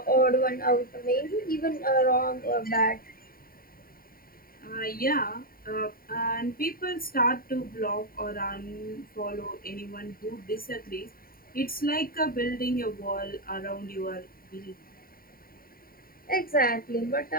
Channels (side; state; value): right; late; 0.43 ms